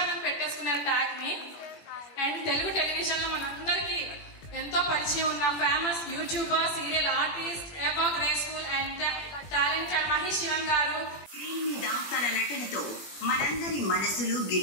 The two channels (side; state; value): right; late; 21 ms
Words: అని పెట్టేసుకున్నారు ట్యాగ్ ని. అండ్ తెలుగు టెలివిజన్ లో మనందరికి ఎంతో పరిచయం ఉన్న famous youtuber, serial artist, ever graceful and talented Mahesh Sivan గారు స్క్రీన్ మీద తన నటనతో మనందరి మనసులు